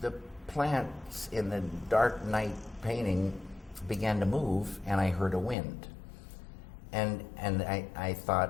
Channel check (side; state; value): right; drops out; at 5.6 s